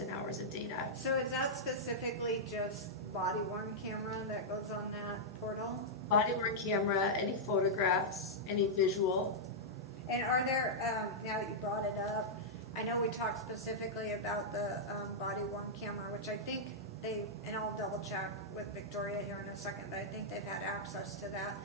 hours of data. So is that specifically just body-worn camera that goes on that portal? Body-worn camera, any photographs, any visual. And are there, now that you brought it up, I know we talked specifically about the body-worn camera, which I think and I'll double check with Victoria here in a second, but I think they've had access to that.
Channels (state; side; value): normal; both; correlation -0.08